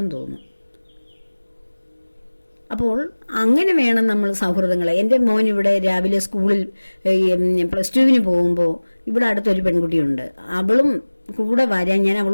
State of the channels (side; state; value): both; inverted; correlation -1.00